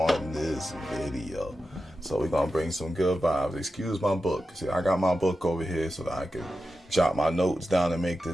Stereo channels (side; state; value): both; normal; correlation 0.91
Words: this video. So we're gonna bring some good vibes. Excuse my book. See, I got my book over here so that I can jot my notes down and make